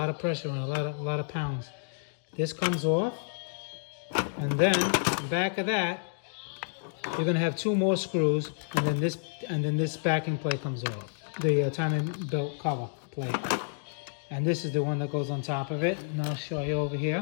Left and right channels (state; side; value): silent; right; digital silence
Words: of pressure and a lot of pounds. This comes off, and then back of that, you're gonna have 2 more screws, and then this backing plate comes off. The timing belt cover plate, and this is the one that goes on top of it. And I'll show you over